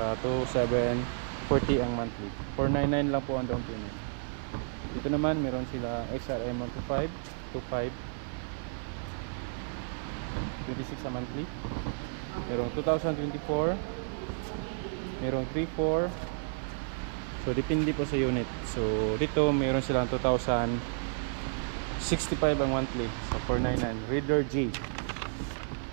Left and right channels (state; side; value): silent; left; 56 dB below the other